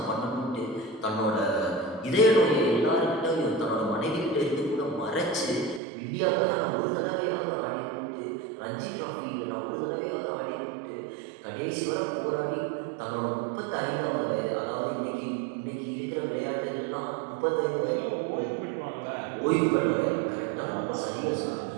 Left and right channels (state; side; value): drops out; left; at 5.8 s